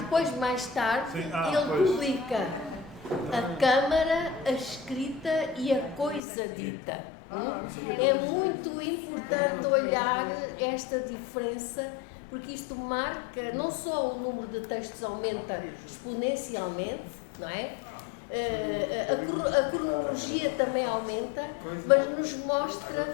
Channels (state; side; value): drops out; right; at 6.2 s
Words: mais tarde, ele publica a Câmara, a Escrita e a Coisa Dita. É muito importante olhar esta diferença, porque isto marca, não só o número de textos aumenta exponencialmente, não é? A cronologia também aumenta, mas nos mostra